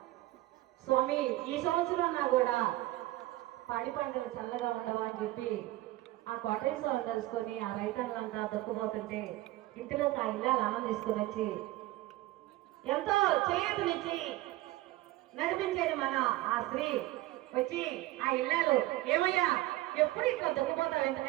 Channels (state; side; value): quieter; left; 17.5 dB